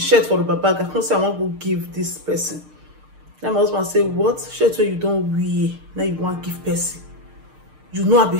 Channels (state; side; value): late; left; 6.6 ms